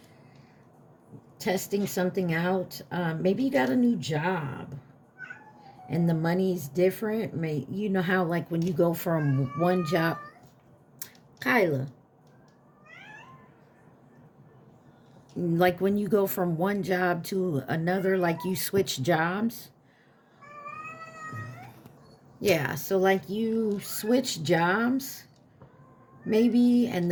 Testing something out. Maybe you got a new job and the money's different. You know how like when you go from one job, Kyla, like when you go from one job to another, like you switch jobs. Yeah, so like you switch jobs maybe, and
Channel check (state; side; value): identical; both; correlation 1.00